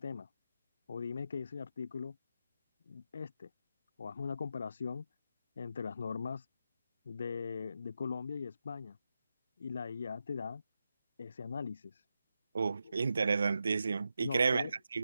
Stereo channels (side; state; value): both; inverted; correlation -0.87